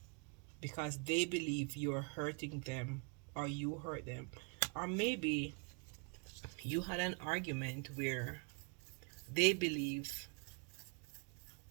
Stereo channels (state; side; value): quieter; left; 35.3 dB